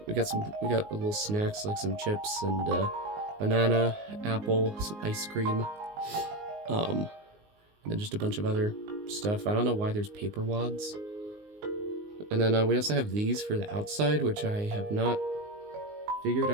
We got little snacks like some chips and banana, apple, some ice cream. And then just a bunch of other stuff. I don't know why there's paper wads. And then we also have these for the outside, which I have not figured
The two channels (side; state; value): left; late; 19 ms